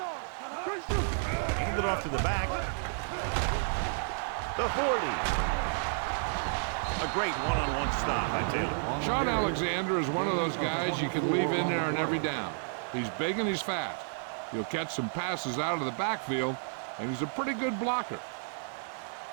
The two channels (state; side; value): silent; left; digital silence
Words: Hand it off to the back. The 40. A great one-on-one stop by Taylor. Sean Alexander is one of those guys you can leave in there on every down. He's big and he's fast. He'll catch some passes out of the backfield, and he's a pretty good blocker.